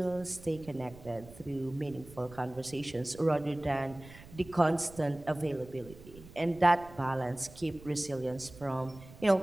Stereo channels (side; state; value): right; noise; rumble, 19 dB below the sound